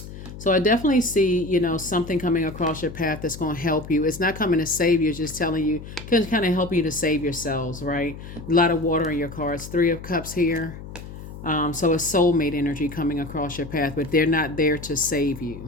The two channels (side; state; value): left; noise; hum, 13 dB below the sound